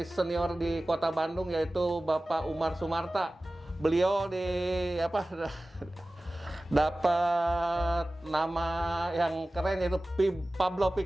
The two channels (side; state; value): both; normal; correlation 0.97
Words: senior di Kota Bandung, yaitu Bapak Umar Sumarta. Beliau dapat nama yang keren, yaitu Pablo